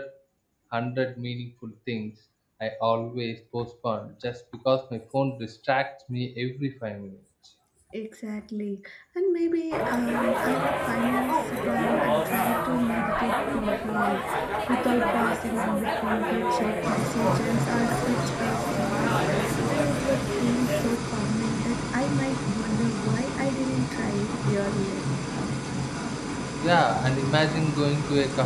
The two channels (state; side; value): identical; both; correlation 1.00